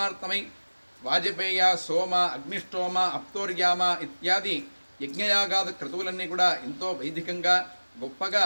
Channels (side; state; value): both; inverted; correlation -1.00